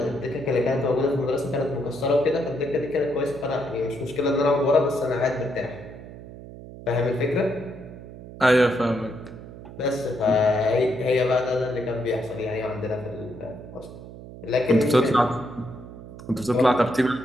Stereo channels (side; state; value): right; noise; hum, 15 dB below the sound